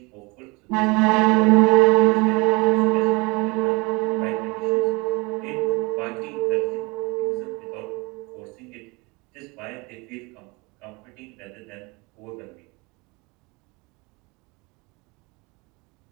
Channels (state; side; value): quieter; left; 26.6 dB